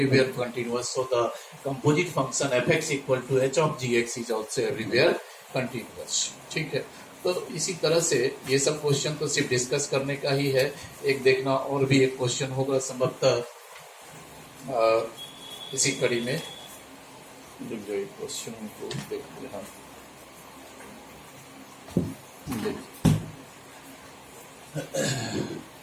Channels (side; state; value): both; identical; correlation 1.00